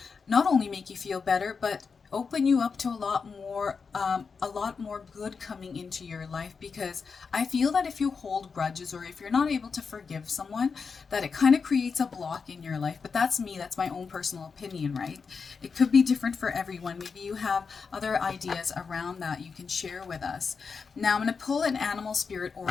Not only make you feel better, but open you up to a lot more good coming into your life, because I feel that if you hold grudges or if you're not able to forgive someone, that it kind of creates a block in your life. But that's me, that's my own personal opinion, right? It could be different for everyone. Maybe you have other ideas around that you can share with us. Now I'm going to pull an animal spirit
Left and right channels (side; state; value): right; quieter; 5.3 dB